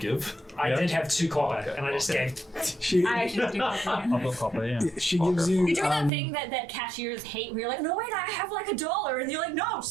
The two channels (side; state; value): left; drops out; at 6.1 s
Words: I did have 2 copper, Okay, and I just okay. gave... She, I actually do. I've got copper, yeah. she gives you... You're doing that thing that cashiers hate where you're like, no, wait, I have like $1. And you're like, no,